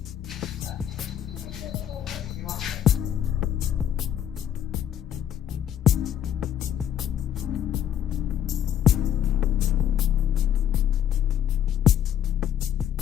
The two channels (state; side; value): quieter; right; 10.1 dB